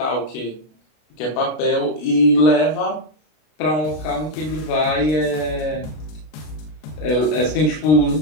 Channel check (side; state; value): right; late; 32 ms